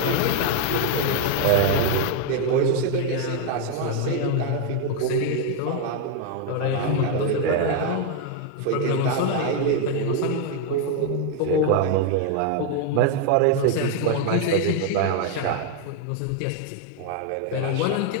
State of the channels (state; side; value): different; both; correlation 0.01